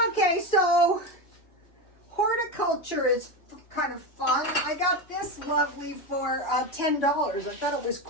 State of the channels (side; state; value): right; late; 3.0 ms